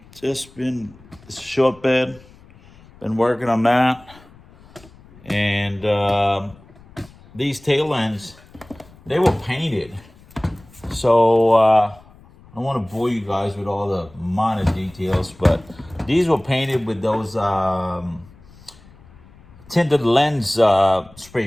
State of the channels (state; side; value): noise; left; rumble, 24 dB below the sound